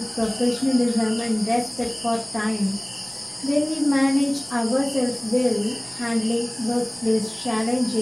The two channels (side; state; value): right; noise; rumble, 28 dB below the sound